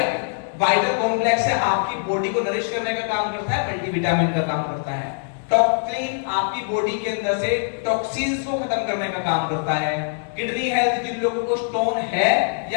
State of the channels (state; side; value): silent; right; digital silence